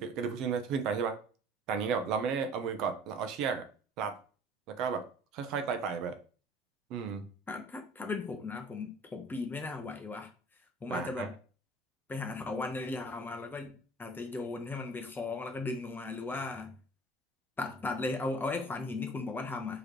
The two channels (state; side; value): normal; both; correlation 0.48